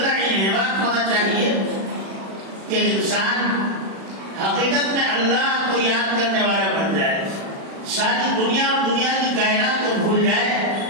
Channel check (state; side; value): late; left; 36 ms